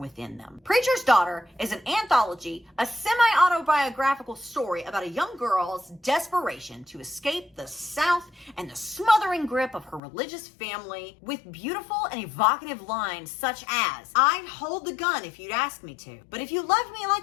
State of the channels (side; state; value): right; drops out; at 10.0 s